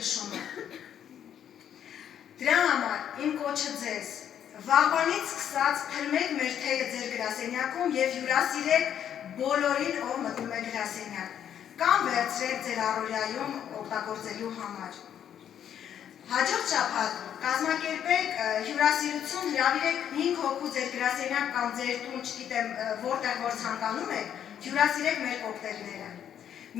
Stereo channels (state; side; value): quieter; right; 9.5 dB